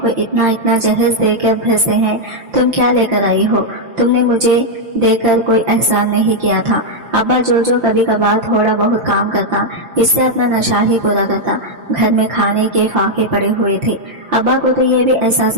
इतना इतना जहेज देकर भेजते हैं, तुम क्या लेकर आई हो? तुमने मुझे देकर कोई एहसान नहीं किया था। अब्बा जो कभी कभार थोड़ा बहुत काम करता, इससे अपना नशा ही पूरा करता। घर में खाने के फाके पड़े हुए थे। अब्बा को तो ये भी एहसास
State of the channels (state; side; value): late; left; 5.8 ms